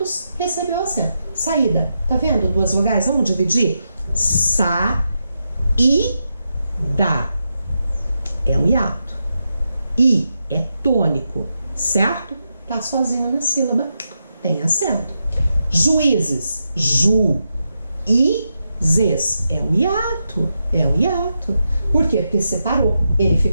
recebeu acento. Saída. Tá vendo? 2 vogais. Vamos dividir? Sa, I, da. É um hiato. I é tônico, certo? Tá sozinho na sílaba. Tem acento. Juízes. Juízes. É um hiato. É um hiato. Por quê? Porque separou. Ele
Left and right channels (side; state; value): both; inverted; correlation -0.86